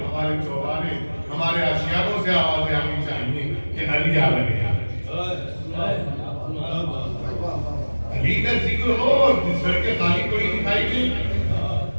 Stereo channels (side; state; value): both; inverted; correlation -1.00